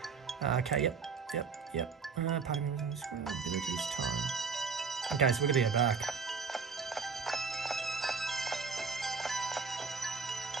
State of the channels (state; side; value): quieter; left; 5.3 dB